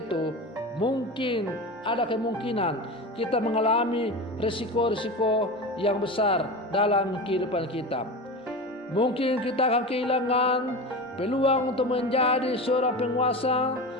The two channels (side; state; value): both; normal; correlation 0.27